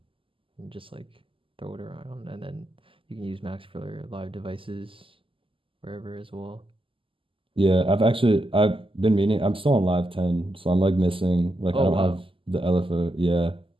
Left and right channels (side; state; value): left; late; 0.25 ms